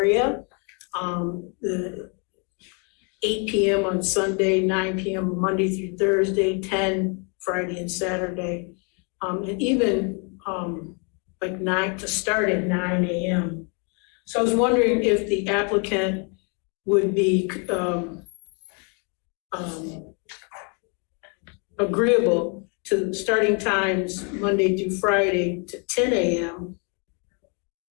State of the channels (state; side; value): quieter; right; 36.4 dB